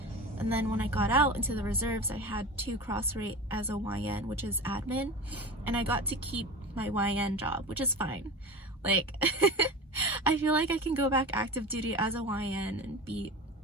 And then when I got out into the reserves, I had to cross-rate as a YN, which is admin. And I got to keep my YN job, which is fine. Like, I feel like I can go back active duty as a YN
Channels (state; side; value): normal; both; correlation 0.30